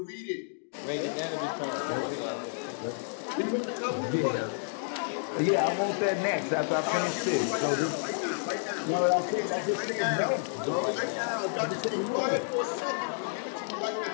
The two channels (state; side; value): silent; right; digital silence